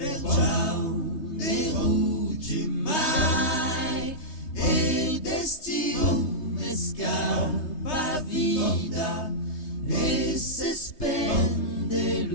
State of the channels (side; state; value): right; late; 3.2 ms